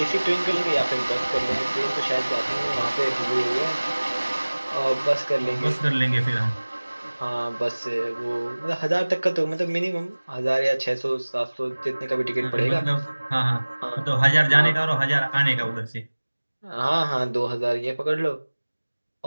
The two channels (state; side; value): inverted; both; correlation -1.00